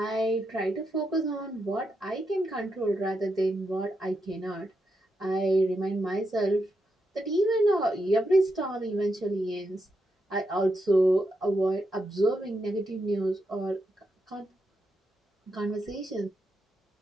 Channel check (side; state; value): both; normal; correlation 0.84